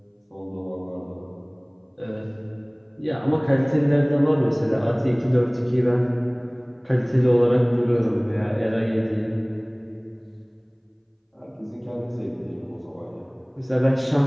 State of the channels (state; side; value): identical; both; correlation 1.00